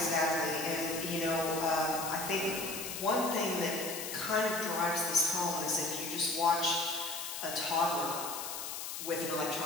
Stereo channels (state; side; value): noise; left; hiss, 6 dB below the sound